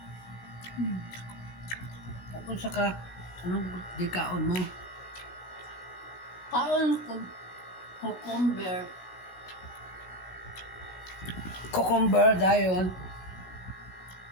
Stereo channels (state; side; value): late; right; 16 ms